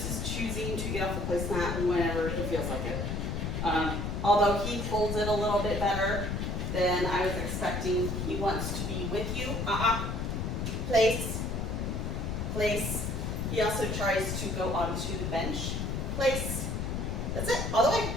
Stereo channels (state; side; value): noise; left; rumble, 2 dB below the sound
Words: is choosing to get off the placemat whenever he feels like it. Although he holds it a little bit better than I was expecting. He wants to be with you. Place. Place. He also tries to go onto the bench. Place. That's it. All the way.